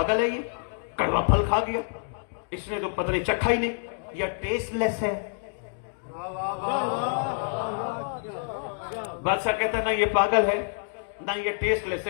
ہے یہ، کڑوا پھل کھا گیا، اس نے تو پتہ نہیں چکھا ہی نہیں، یا ٹیسٹ لیس ہے. بادشاہ کہتا نہ یہ پاگل ہے نہ یہ ٹیسٹ لیس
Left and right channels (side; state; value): right; silent; digital silence